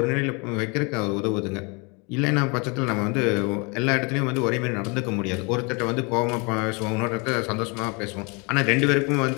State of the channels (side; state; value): right; quieter; 30.9 dB